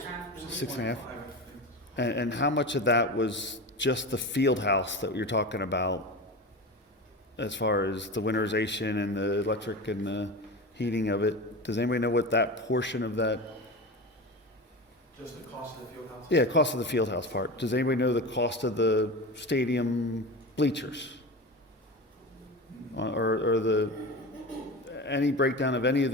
6.5. And how much of that was just the field house that you're talking about, as far as the winterization and the electric and the heating of it? Does anybody know what that portion of that? Just the cost of the field house? Yeah, cost of the field house part. Does anybody know the cost of the stadium bleachers? Or the, any breakdown of any of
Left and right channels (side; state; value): both; normal; correlation 0.27